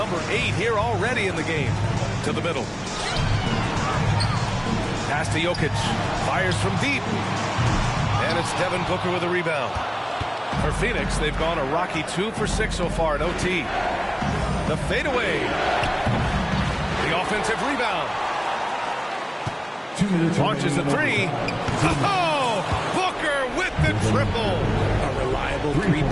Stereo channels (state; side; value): identical; both; correlation 1.00